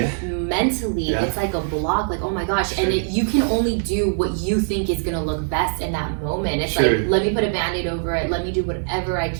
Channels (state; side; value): silent; left; digital silence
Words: mentally, it's like a block. Like, oh my gosh! Sure. And you can only do what you think is gonna look best in that moment. It's Sure. like, let me put a Band-Aid over it. Let me do whatever I